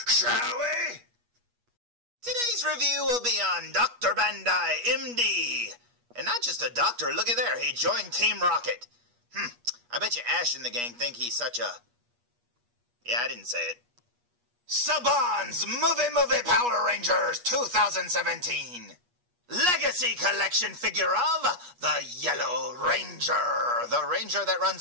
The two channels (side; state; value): left; late; 8.3 ms